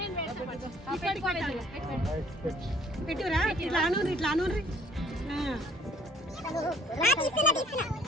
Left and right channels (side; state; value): both; normal; correlation 0.58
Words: పెట్టురా ఇట్లా అనూరి ఇట్లా అనూరి.